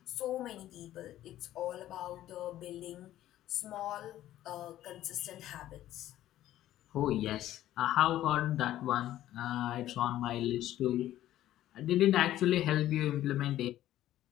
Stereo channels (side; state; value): right; quieter; 13.5 dB